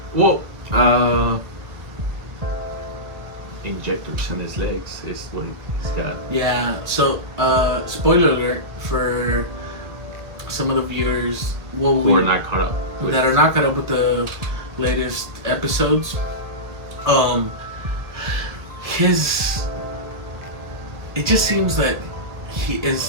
Well, injectors in his legs is what he's got. Yeah. So, spoiler alert for some of the viewers who are not caught up. That are not caught up with the latest episodes. It just seems that he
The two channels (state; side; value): late; left; 1.8 ms